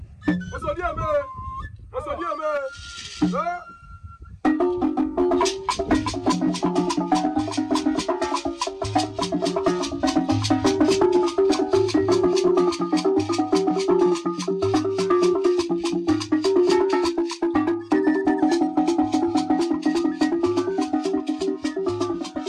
Osodi eme. Osodi eme. Huh?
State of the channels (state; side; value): identical; both; correlation 1.00